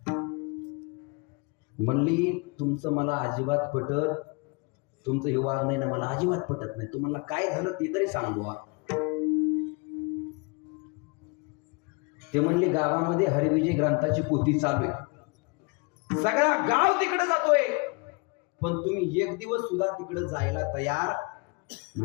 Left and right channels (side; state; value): right; quieter; 30.3 dB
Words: म्हणली तुमचं मला अजिबात पटत, तुमचं हे वागणं आहे ना मला अजिबात पटत नाही. तुम्हाला काय झालं ते तरी सांगू. ते म्हणले गावामध्ये हरिविजय ग्रंथाची पोथी चालू आहे, सगळा गाव तिकडे जातोय, पण तुम्ही एक दिवस सुद्धा तिकडे जायला तयार